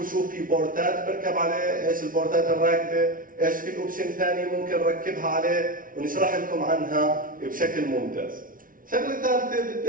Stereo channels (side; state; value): left; late; 0.40 ms